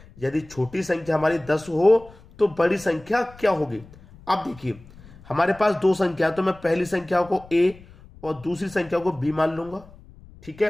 यदि छोटी संख्या हमारी 10 हो तो बड़ी संख्या क्या होगी। अब देखिए हमारे पास 2 संख्या, तो मैं पहली संख्या को a और दूसरी संख्या को b मान लूंगा, ठीक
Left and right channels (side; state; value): left; noise; rumble, 22 dB below the sound